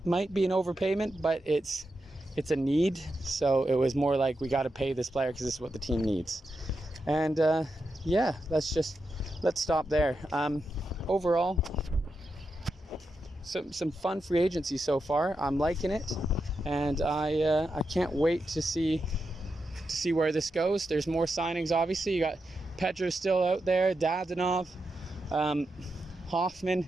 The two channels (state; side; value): normal; both; correlation 0.87